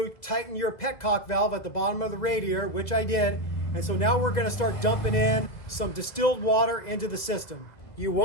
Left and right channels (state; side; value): late; right; 2.0 ms